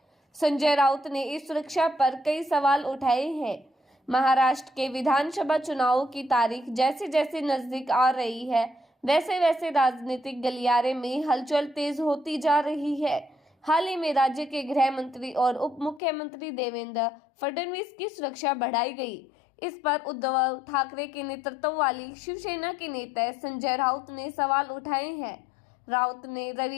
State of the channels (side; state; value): right; drops out; at 16.0 s